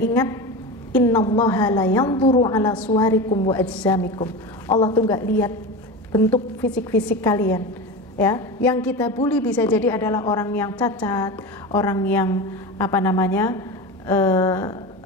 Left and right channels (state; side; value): normal; both; correlation 0.26